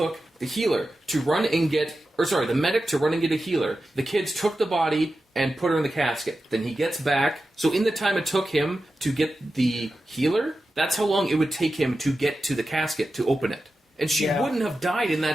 the healer to run and get, the medic to run and get a healer, the kids took the body and put her in the casket. Then he gets back. So in the time it took him to get the healer, that's how long it would take him to get to the casket to open it. And she wouldn't have died in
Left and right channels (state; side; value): normal; both; correlation 0.92